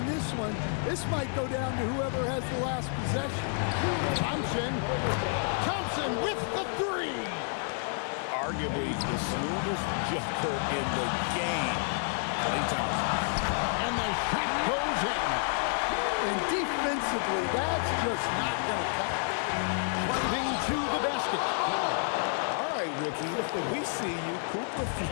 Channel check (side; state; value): right; silent; 57 dB below the other